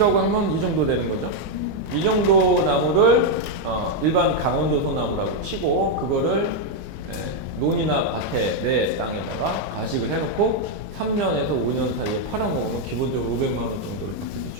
하면 이 정도 되는 거죠. 이 정도 나무를 일반 강원도 소나무라고 치고 그거를 논이나 밭에 내 땅에다가 가식을 해놓고 3년에서 5년 사이에 팔아먹으면 기본적으로 500만 원 정도를 받게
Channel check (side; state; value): both; normal; correlation 0.00